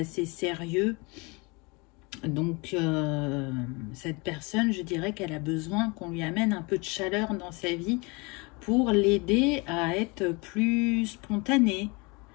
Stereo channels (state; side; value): quieter; right; 28.0 dB